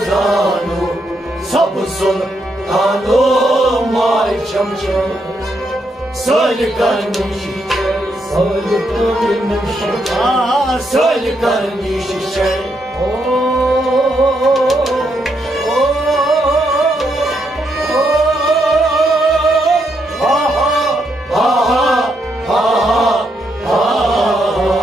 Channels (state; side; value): normal; both; correlation 0.78